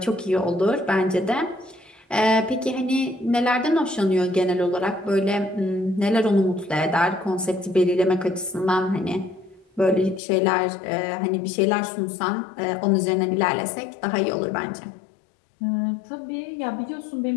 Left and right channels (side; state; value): right; drops out; at 10.2 s